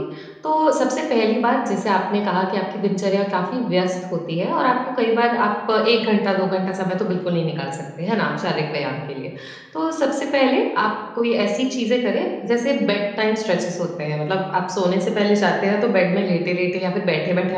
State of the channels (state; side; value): identical; both; correlation 1.00